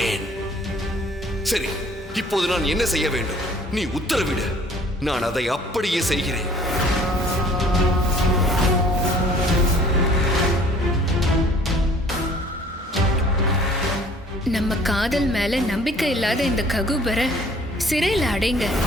சரி, இப்போது நான் என்ன செய்ய வேண்டும்? நீ உத்தரவிடு, நான் அதை அப்படியே செய்கிறேன். நம்ம காதல் மேல நம்பிக்கை இல்லாத இந்த ககுபரை சிறையில் அடைங்க.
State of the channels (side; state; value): both; normal; correlation 0.55